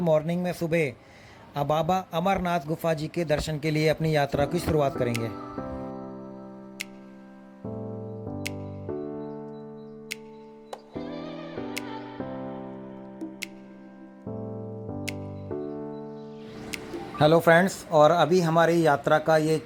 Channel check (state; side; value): identical; both; correlation 1.00